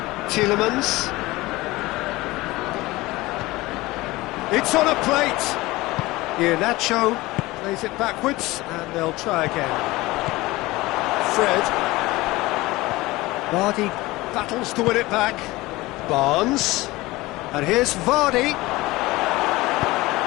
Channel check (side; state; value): right; quieter; 20.0 dB